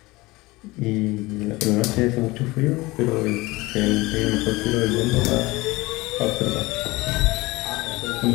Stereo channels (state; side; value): quieter; right; 21.4 dB